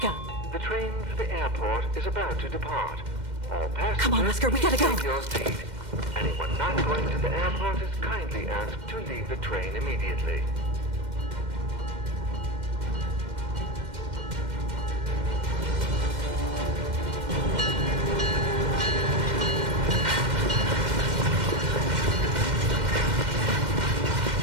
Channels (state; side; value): late; left; 2.1 ms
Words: The train for the airport is about to depart. All passengers, Come on, Oscar, we gotta go. take your seat. Anyone not going to the airport is kindly asked to leave the train immediately.